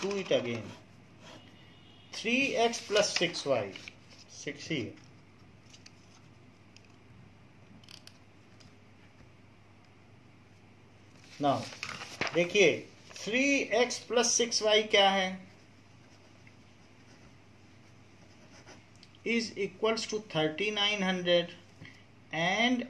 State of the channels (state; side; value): identical; both; correlation 1.00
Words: do it again. 3x + 6y, 6 ही है। नाउ देखिए 3x + 6y क्या है, is equals to 3900 and